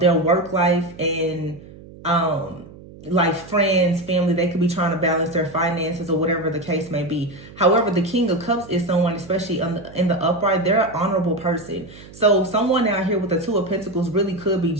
their work life and like friends, family. They could be trying to balance their finances or whatever the case may be. However, the King of Cups is someone, especially in the upright, they're an honorable person. So someone out here with the Two of Pentacles really could be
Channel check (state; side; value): noise; right; hum, 19 dB below the sound